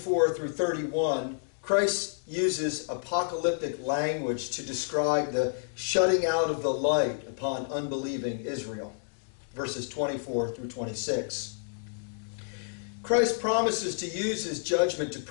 through 31, Christ uses apocalyptic language to describe the shutting out of the light upon unbelieving Israel. Verses 24 through 26. Christ promises to use his judgment to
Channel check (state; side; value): silent; right; digital silence